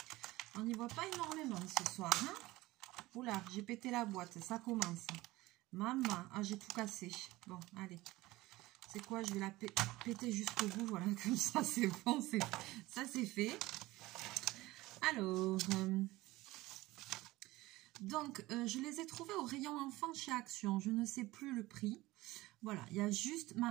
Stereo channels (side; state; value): left; quieter; 19.0 dB